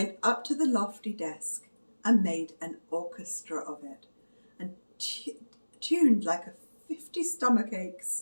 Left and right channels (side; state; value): both; inverted; correlation -1.00